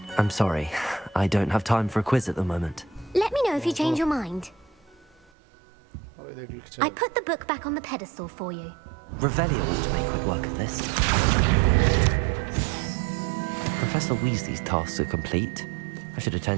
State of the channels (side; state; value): left; drops out; at 5.2 s